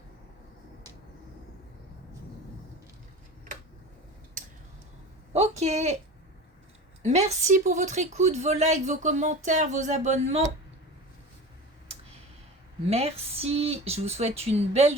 Ok. Merci pour votre écoute, vos likes, vos commentaires, vos abonnements. Merci. Je vous souhaite une belle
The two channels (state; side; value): normal; both; correlation 0.32